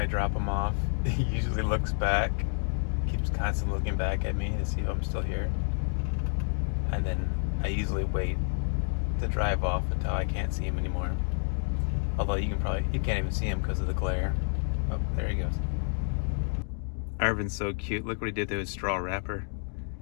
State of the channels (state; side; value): silent; right; 58 dB below the other